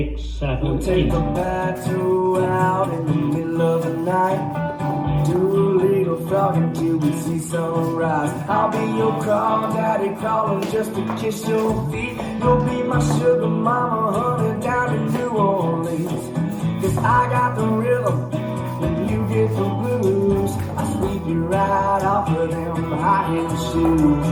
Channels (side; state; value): both; identical; correlation 1.00